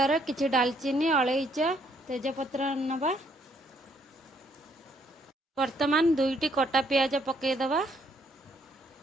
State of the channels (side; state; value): both; normal; correlation 0.69